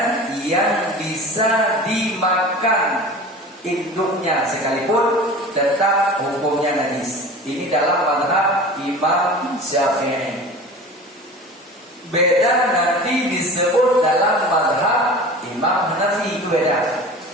yang bisa dimakan induknya sekalipun, tetap hukumnya najis. Ini dalam mazhab Imam Syafi'i. Beda nanti disebut dalam mazhab Imam Hanafi, itu beda.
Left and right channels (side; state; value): both; normal; correlation 0.37